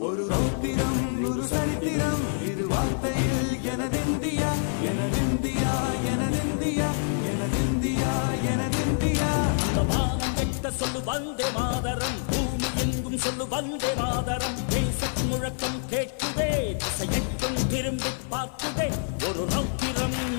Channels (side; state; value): right; silent; 56 dB below the other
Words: ஒரு ரௌத்திரம் ஒரு சரித்திரம் இரு வார்த்தையில் எனதிந்தியா எனதிந்தியா எனதிந்தியா எனதிந்தியா எனதிந்தியா. அந்த வானம் கெட்ட சொல்லு வந்தே மாதரம், பூமி எங்கும் சொல்லு வந்தே மாதரம். தேசத்தின் முழக்கம் கேட்குதே, திசையெட்டும் திரும்பி பார்க்குதே. ஒரு ரௌத்திரம்